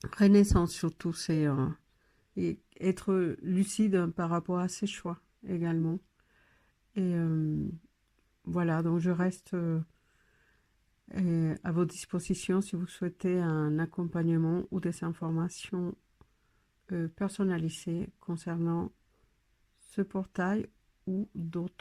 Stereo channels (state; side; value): identical; both; correlation 1.00